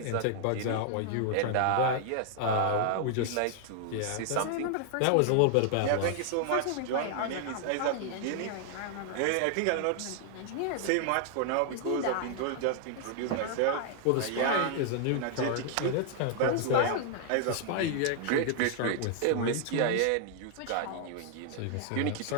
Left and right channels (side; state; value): both; different; correlation 0.00